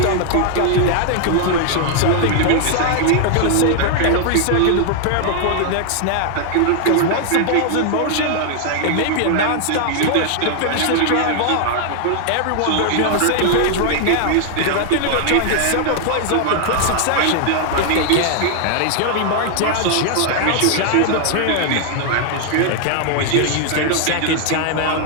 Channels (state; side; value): different; both; correlation 0.00